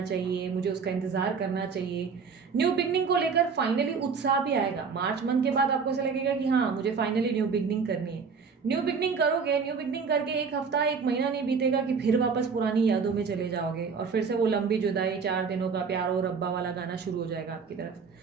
चाहिए, मुझे उसका इंतज़ार करना चाहिए। न्यू बिगनिंग को लेकर फाइनली उत्साह भी आएगा। मार्च मंथ के बाद आपको ऐसा लगेगा कि हाँ मुझे फाइनली न्यू बिगनिंग करनी है। न्यू बिगनिंग करोगे, न्यू बिगनिंग करके एक हफ्ता एक महीना नहीं बीतेगा कि फिर वापस पुरानी यादों में चले जाओगे और फिर से वो लंबी जुदाई, 4 दिनों का प्यार और रब्बा वाला गाना शुरू हो जाएगा आपकी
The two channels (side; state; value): left; quieter; 5.5 dB